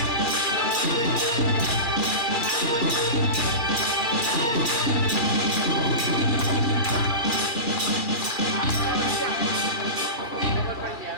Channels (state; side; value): late; right; 2.3 ms